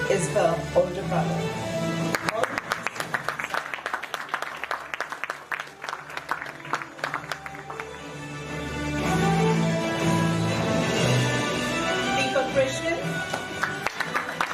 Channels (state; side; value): identical; both; correlation 1.00